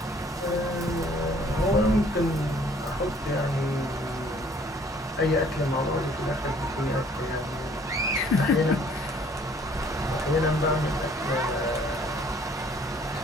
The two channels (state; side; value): normal; both; correlation 0.58